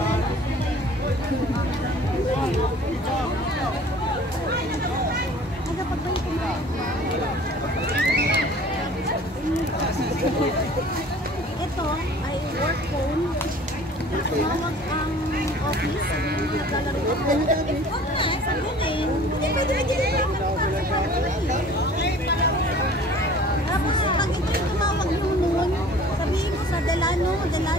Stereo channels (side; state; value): both; normal; correlation 0.48